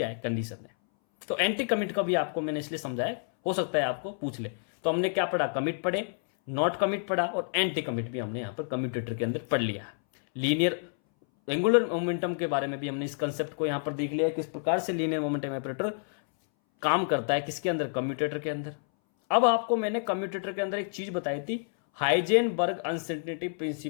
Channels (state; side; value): silent; right; 59 dB below the other